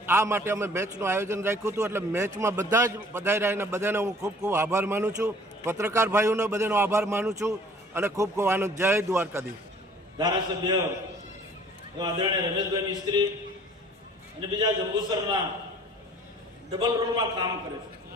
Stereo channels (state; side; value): normal; both; correlation 0.52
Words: આ માટે અમે મેચનું આયોજન રાખ્યું હતું। એટલે મેચમાં બધા જ પધાર્યા અને બધાને હું ખૂબ ખૂબ આભાર માનું છું, પત્રકાર ભાઈઓનો બધાનો આભાર માનું છું અને ખૂબ ખૂબ આનંદ। જય દ્વારકાધીશ। ધારાસભ્ય આદરણીય રમેશભાઈ મિસ્ત્રી અને બીજા જંબુસરના ડબલ રોલમાં કામ કરે છે,